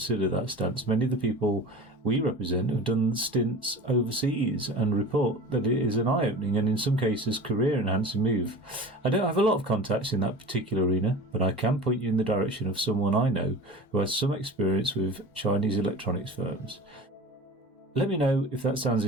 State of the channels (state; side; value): normal; both; correlation 0.36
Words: that stance. Many of the people we represent have done stints overseas and report that it is an eye-opening and in some cases career-enhancing move. I don't have a lot of contacts in that particular arena, but I can point you in the direction of someone I know who has some experience with Chinese electronics firms. Let me know if that sounds